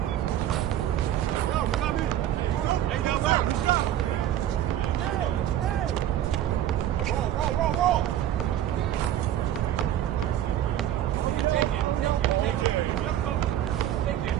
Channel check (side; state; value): left; quieter; 11.8 dB